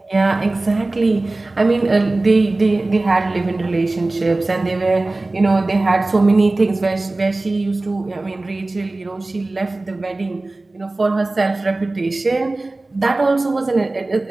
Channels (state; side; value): quieter; left; 3.0 dB